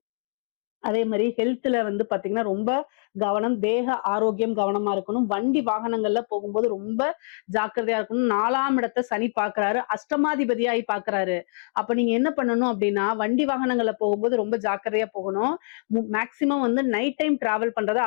அதே மாதிரி ஹெல்த்ல வந்து பாத்தீங்கன்னா ரொம்ப கவனம், தேக ஆரோக்கியம் கவனமா இருக்கணும். வண்டி வாகனங்கள்ல போகும்போது ரொம்ப ஜாக்கிரதையா இருக்கணும். 4ஆம் இடத்தை சனி பாக்குறாரு, அஷ்டமாதிபதியாகி பாக்குறாரு. அப்ப நீங்க என்ன பண்ணணும் அப்படின்னா, வண்டி வாகனங்கள்ல போகும்போது ரொம்ப ஜாக்கிரதையா போகணும். மேக்சிமம் வந்து நைட் டைம் டிராவல் பண்றதை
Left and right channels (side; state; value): right; silent; digital silence